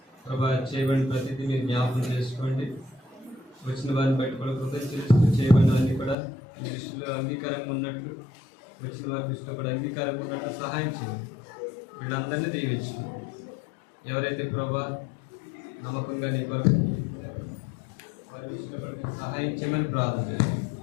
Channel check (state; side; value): drops out; right; at 6.2 s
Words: ప్రభా చేయబడిన ప్రతిదీ మీరు జ్ఞాపకం చేసుకోండి. వచ్చిన వారిని బట్టి కూడా కృతజ్ఞత చేయబడినవన్నీ కూడా మీ దృష్టిలో అంగీకారంగా ఉన్నట్లు, వచ్చిన వారి దృష్టిలో కూడా అంగీకారంగా ఉన్నట్లు సహాయం చేయండి. వీళ్ళందరినీ దీవించండి. ఎవరైతే ప్రభా నమ్మకంగా నీ కొరకు వారి దృష్టిలో కూడా సహాయం చేయమని ప్రార్థన చేయండి.